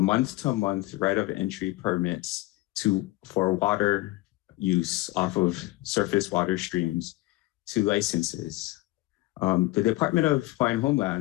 right of entry permits for water use off of surface water streams to licenses. The Department of Hawaiian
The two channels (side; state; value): right; quieter; 19.3 dB